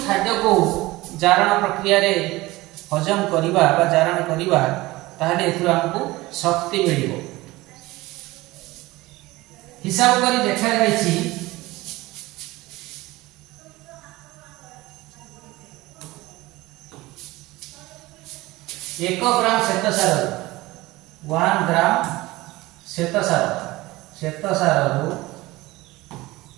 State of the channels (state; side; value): quieter; left; 19.7 dB